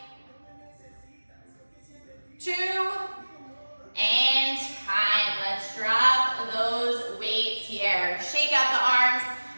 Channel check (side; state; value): both; inverted; correlation -1.00